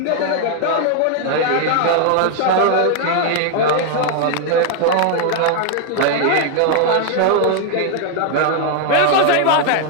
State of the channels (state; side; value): different; both; correlation 0.00